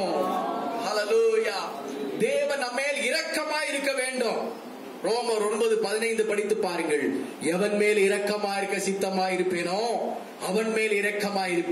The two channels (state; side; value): identical; both; correlation 1.00